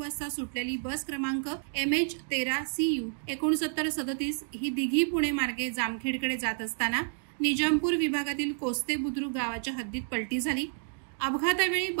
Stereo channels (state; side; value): silent; left; 58 dB below the other